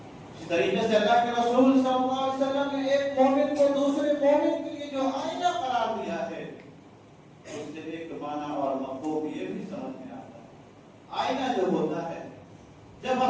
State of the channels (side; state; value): both; identical; correlation 1.00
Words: اسی طریقے سے اللہ کے رسول صلی اللہ علیہ وسلم نے ایک مومن کو دوسرے مومن کے لیے جو آئینہ قرار دیا ہے اس سے ایک معنی اور مفہوم یہ بھی سمجھ میں آتا ہے۔ آئینہ جو ہوتا ہے، جب